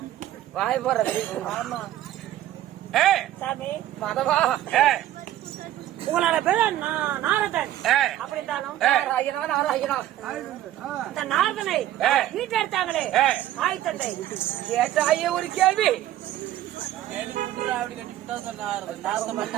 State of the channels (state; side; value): quieter; left; 13.3 dB